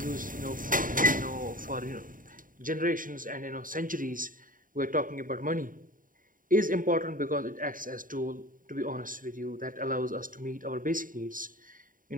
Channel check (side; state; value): left; late; 0.40 ms